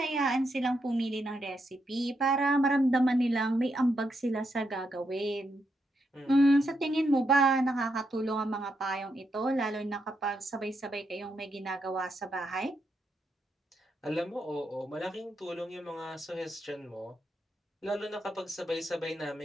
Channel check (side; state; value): both; normal; correlation 0.81